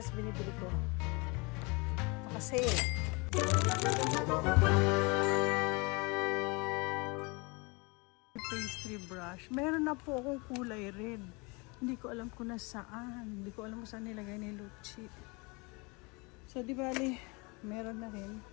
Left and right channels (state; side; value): quieter; right; 28.4 dB